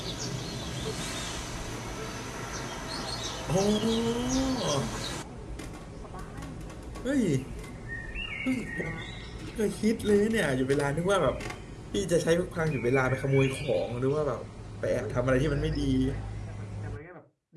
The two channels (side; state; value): both; identical; correlation 1.00